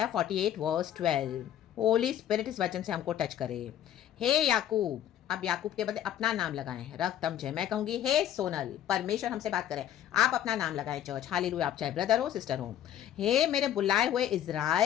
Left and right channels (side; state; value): right; quieter; 11.0 dB